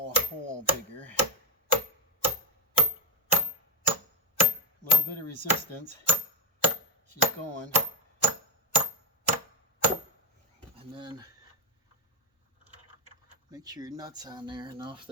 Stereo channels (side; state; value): both; normal; correlation 0.05